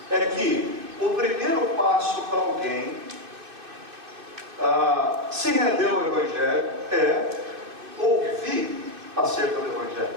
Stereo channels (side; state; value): left; late; 2.6 ms